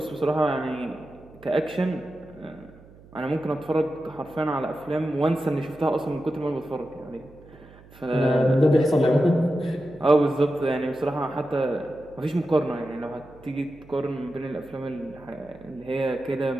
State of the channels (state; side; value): noise; right; hum, 23 dB below the sound